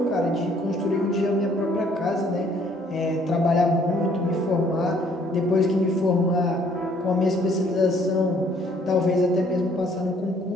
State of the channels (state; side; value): normal; both; correlation 0.62